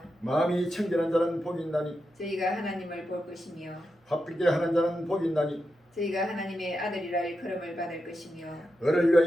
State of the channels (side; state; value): both; normal; correlation 0.88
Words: 마음이 청결한 자는 복이 있나니 저희가 하나님을 볼 것이며 화평케 하는 자는 복이 있나니 저희가 하나님의 아들이라 일컬음을 받을 것이며 너를